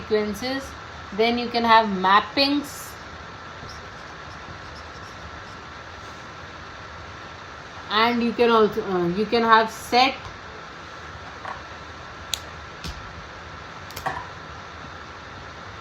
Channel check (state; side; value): identical; both; correlation 1.00